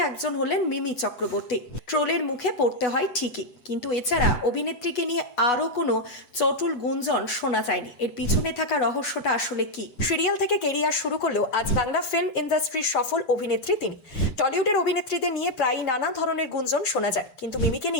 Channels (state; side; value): late; right; 8.1 ms